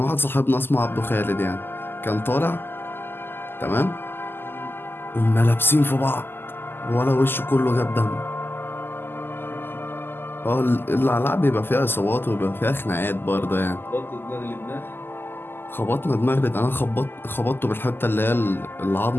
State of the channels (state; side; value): late; right; 0.10 ms